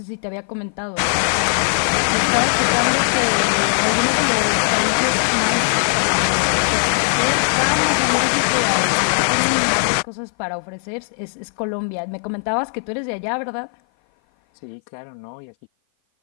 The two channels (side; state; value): right; silent; 56 dB below the other